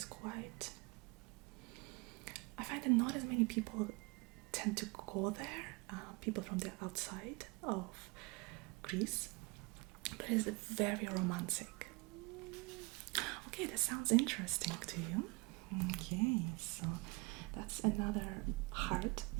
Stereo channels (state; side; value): quieter; left; 27.8 dB